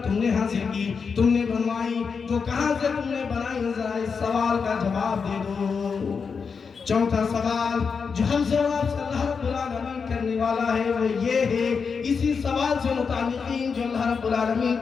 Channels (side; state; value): right; quieter; 5.6 dB